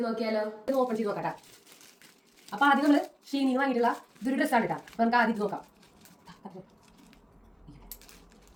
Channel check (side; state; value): both; identical; correlation 1.00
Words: നോക്കിയാലോ? ഇത് ഓപ്പൺ ചെയ്ത് നോക്കട്ടാ. അപ്പൊ ആദ്യം നമ്മള് ഷീനിന്ന് വാങ്ങിയിട്ടുള്ള ഇതൊരു ഡ്രസ്സാണ് കേട്ടാ. അപ്പൊ നമുക്ക് ആദ്യം നോക്കാം.